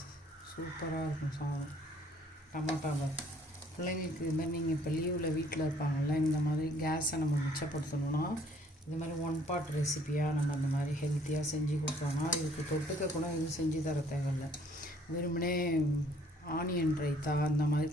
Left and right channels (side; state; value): both; normal; correlation 0.61